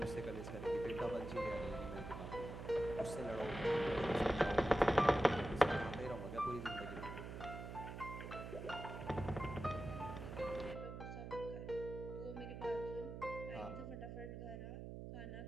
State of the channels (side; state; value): right; noise; hum, 8 dB below the sound